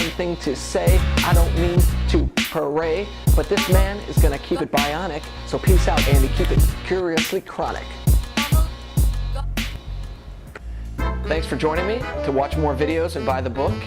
thing to say. I don't mean to parade, but this man is gonna keep it bionic. So peace out, Andy, keep it curiously chronic. Thanks for joining me. To watch more videos and buy the book,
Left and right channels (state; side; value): identical; both; correlation 1.00